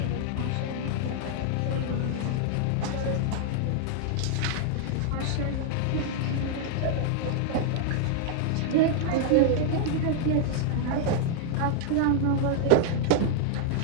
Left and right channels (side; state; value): both; different; correlation -0.01